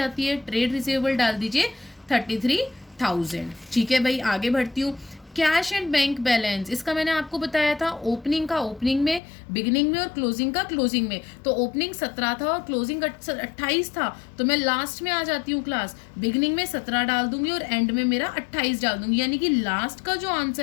है। ट्रेड रिसीवेबल डाल दीजिए 33,000। ठीक है भाई, आगे बढ़ती हूँ। कैश एंड बैंक बैलेंस, इसका मैंने आपको बताया था ओपनिंग का ओपनिंग में, बिगिनिंग में और क्लोजिंग का क्लोजिंग में। तो ओपनिंग 17 था और क्लोजिंग 28 था। तो मैं लास्ट में आ जाती हूँ क्लास, बिगिनिंग में 17 डाल दूंगी और एंड में मेरा 28 डाल दूंगी। यानी कि लास्ट का जो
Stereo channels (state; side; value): drops out; right; at 9.2 s